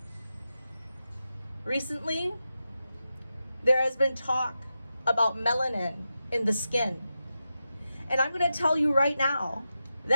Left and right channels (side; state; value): both; inverted; correlation -0.90